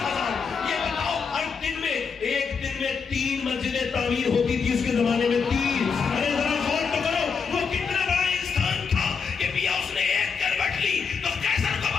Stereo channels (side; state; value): right; quieter; 5.7 dB